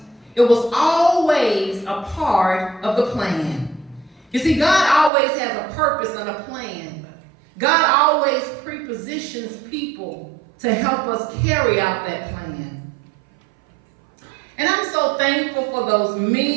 It was always a part of the plan. You see, God always has a purpose and a plan. God always prepositions people to help us carry out that plan. And I'm so thankful for those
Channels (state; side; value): drops out; left; at 5.1 s